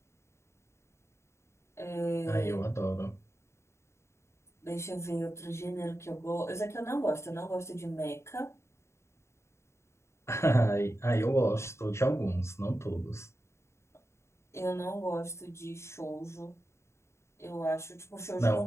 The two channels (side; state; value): right; late; 0.13 ms